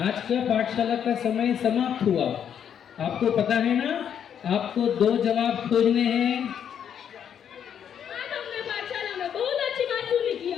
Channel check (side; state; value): right; quieter; 8.7 dB